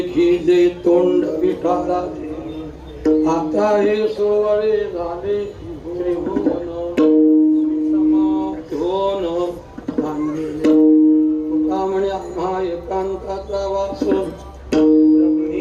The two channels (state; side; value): identical; both; correlation 1.00